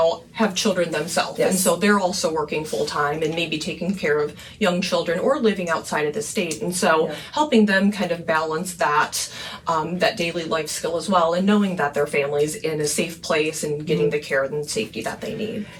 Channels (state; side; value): identical; both; correlation 1.00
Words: have children themselves. Yes. And so they're also working full time and maybe taking care of young children or living outside of the state. And so helping them kind of balance that, that daily life skill as well, and knowing that their family's in a safe place and getting the care and safety that they need.